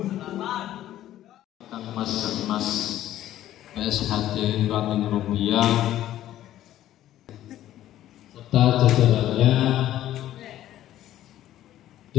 Mas PSHD Ranting Rupiah serta jajarannya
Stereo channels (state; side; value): quieter; right; 13.0 dB